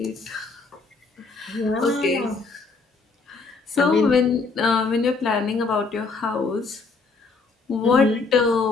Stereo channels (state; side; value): quieter; right; 4.2 dB